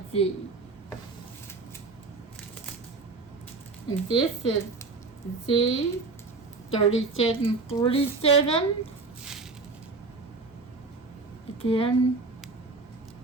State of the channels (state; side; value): quieter; left; 3.9 dB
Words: Z. And this is Z3747. Again,